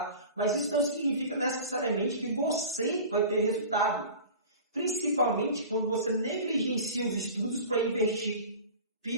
mas isso não significa necessariamente que você vai ter resultado. Principalmente quando você negligencia os estudos para investir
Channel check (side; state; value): both; inverted; correlation -0.38